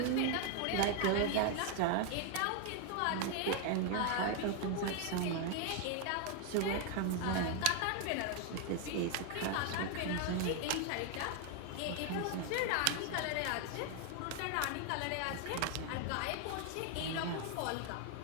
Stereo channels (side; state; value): both; different; correlation 0.00